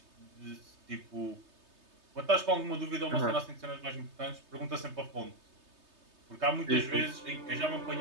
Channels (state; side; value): late; left; 3.3 ms